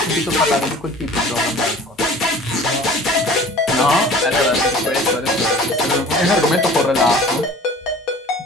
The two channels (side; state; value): both; normal; correlation 0.45